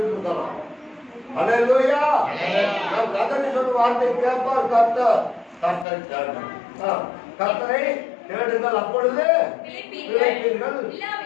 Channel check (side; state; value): right; drops out; at 5.9 s